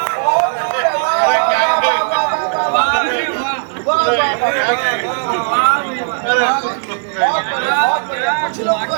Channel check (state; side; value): silent; left; 64 dB below the other